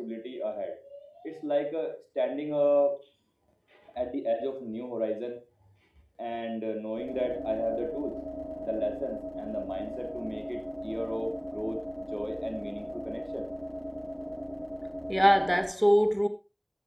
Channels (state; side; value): identical; both; correlation 1.00